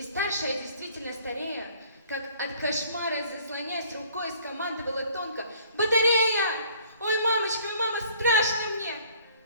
старшая, действительно старея, как от кошмара заслоняясь рукой, скомандовала тонко: «Батарея! Ой, мамочка, ой, мама, страшно мне!»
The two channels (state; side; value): inverted; both; correlation -0.56